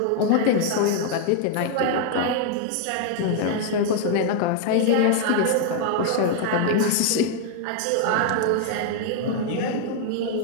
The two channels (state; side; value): different; both; correlation 0.00